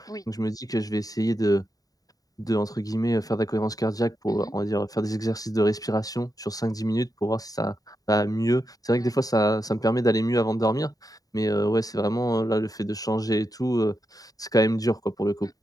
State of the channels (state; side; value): late; right; 0.18 ms